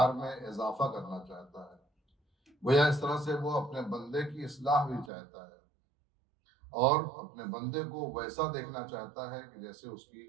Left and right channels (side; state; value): left; drops out; at 5.1 s